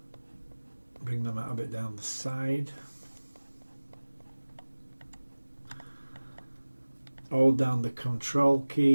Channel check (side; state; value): both; inverted; correlation -1.00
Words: Bring them out a bit down the side. Hold down the control